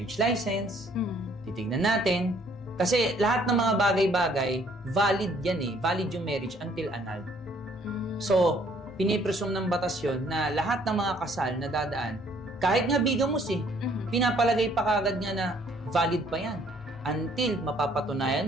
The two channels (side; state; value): both; normal; correlation 0.62